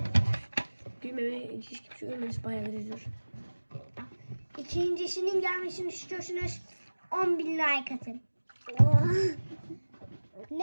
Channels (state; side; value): inverted; both; correlation -1.00